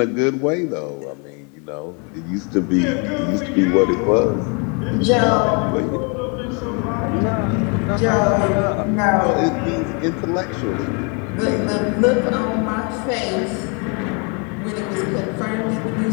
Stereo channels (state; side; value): quieter; right; 34.6 dB